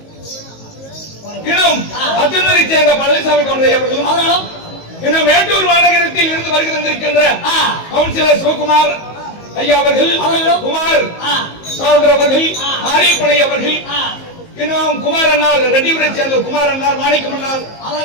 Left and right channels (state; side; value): late; right; 19 ms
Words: இன்னும் அத்துணரை சேர்ந்த பழனிசாமி கொன்றை அவர்களும் இன்னும் மேட்டூர் மாநகரத்தில் இருந்து வருகை தந்திருக்கின்ற கவுன்சிலர் சிவகுமார் ஐயா அவர்கள், குமார் சகோதரர் அவர்கள், மாரியப்பனை அவர்கள், இன்னும் குமார் அண்ணார் ரெட்டிபுரை சேர்ந்த குமார் அண்ணார், மாணிக்கம் அண்ணார்,